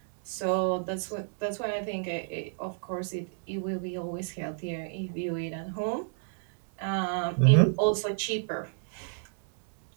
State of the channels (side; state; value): left; silent; digital silence